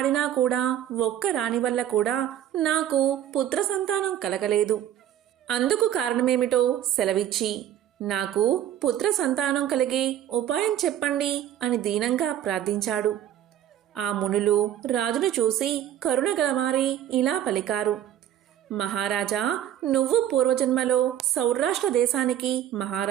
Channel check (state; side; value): quieter; left; 11.2 dB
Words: కూడా ఒక్క రాణి వల్ల కూడా నాకు పుత్ర సంతానం కలగలేదు. అందుకు కారణమేమిటో సెలవిచ్చి నాకు పుత్ర సంతానం కలిగే ఉపాయం చెప్పండి అని దీనంగా ప్రార్థించాడు. ఆ మునులు రాజును చూసి కరుణ గలవారి ఇలా పలికారు. మహారాజా, నువ్వు పూర్వజన్మలో సౌరాష్ట్ర దేశానికి